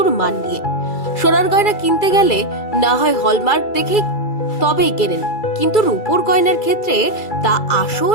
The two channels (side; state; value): right; late; 2.3 ms